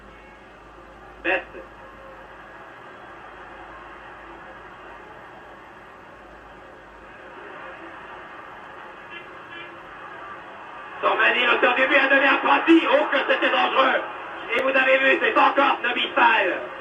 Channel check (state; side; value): identical; both; correlation 1.00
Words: Best. Sormani, l'auteur du but, a donné à Prati. Oh, que c'était dangereux. Et vous avez vu, c'est encore Nobi Fall.